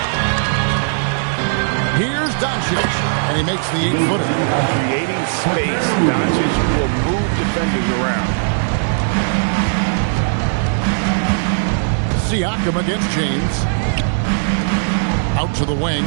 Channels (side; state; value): left; silent; digital silence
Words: Here's Doncic. And he makes the 8-footer. Creating space, Doncic will move defenders around. Siakam against James. Out to the wing.